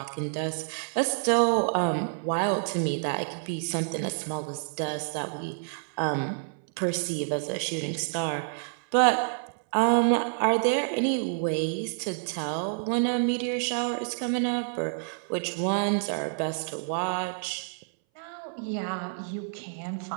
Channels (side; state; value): left; silent; 59 dB below the other